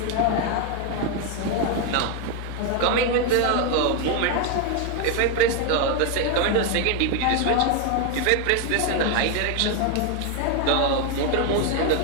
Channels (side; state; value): both; different; correlation 0.01